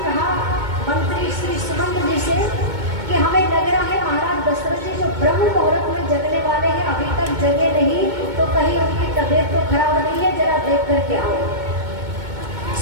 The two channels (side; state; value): left; late; 2.2 ms